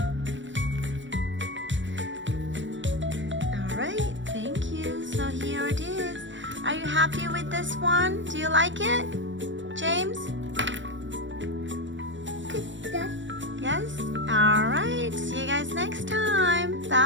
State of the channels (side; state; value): left; late; 0.54 ms